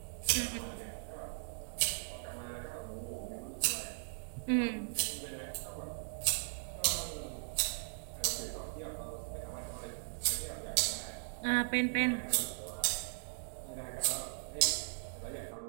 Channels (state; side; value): silent; left; digital silence